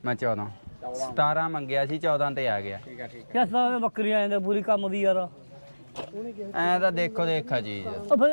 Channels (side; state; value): both; inverted; correlation -1.00